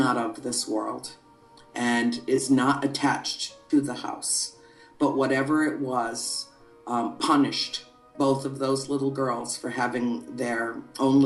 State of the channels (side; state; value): both; identical; correlation 1.00